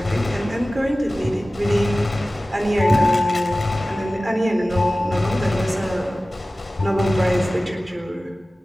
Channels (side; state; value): both; normal; correlation 0.97